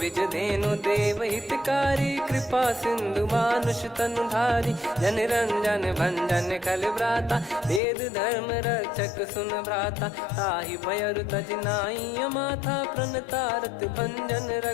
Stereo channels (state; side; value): drops out; right; at 7.8 s